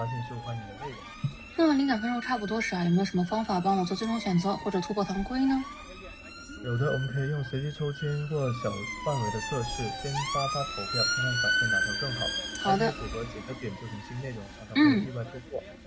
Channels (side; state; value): both; identical; correlation 1.00